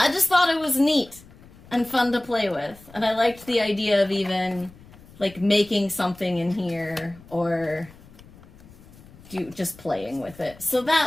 it was neat and fun to play with. And I liked the idea of even like making something in here or just playing with it. So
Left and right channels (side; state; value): left; noise; rumble, 22 dB below the sound